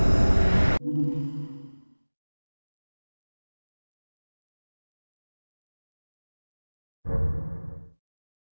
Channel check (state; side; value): inverted; both; correlation -1.00